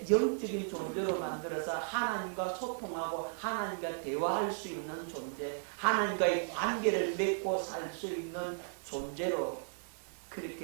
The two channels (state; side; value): silent; left; 54 dB below the other